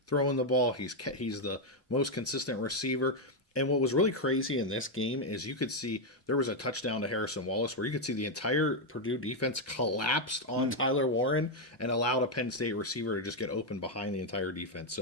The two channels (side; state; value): both; normal; correlation 0.02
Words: throwing the ball. He's the most consistent receiver. And what was really crazy in this game is you could see there was a touchdown to Harrison Wallace where you could see the entire Purdue defense collapsed on Tyler Warren and allowed a Penn State receiver to just get open behind the entire defense.